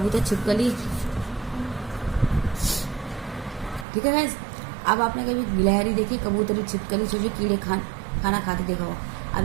छिपकली, ठीक है गाइस, अब आपने कभी गिलहरी देखी, कबूतर, छिपकली, सोचिए कीड़े खाना खाते देखा हो। अब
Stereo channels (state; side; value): drops out; left; at 3.9 s